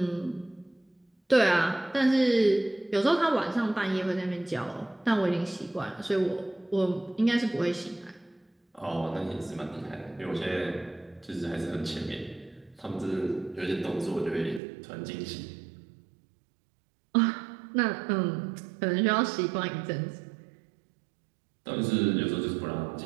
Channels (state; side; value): drops out; left; at 14.6 s